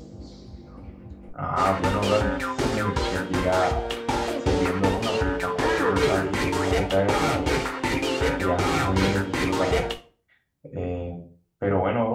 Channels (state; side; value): identical; both; correlation 1.00